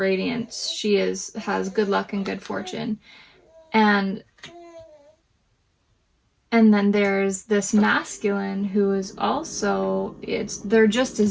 She has good luck and good fortune. And then there's this masculine who is also, they're just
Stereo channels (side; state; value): both; identical; correlation 1.00